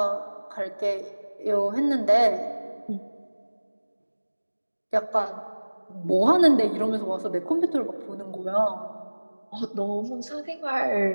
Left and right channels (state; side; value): inverted; both; correlation -1.00